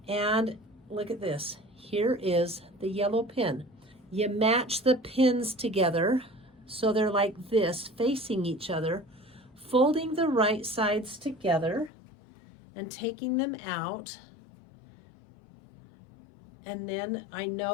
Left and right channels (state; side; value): drops out; right; at 11.9 s